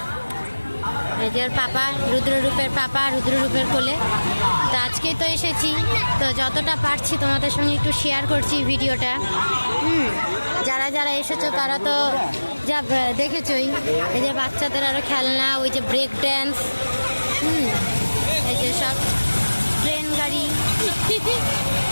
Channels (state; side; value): inverted; both; correlation -1.00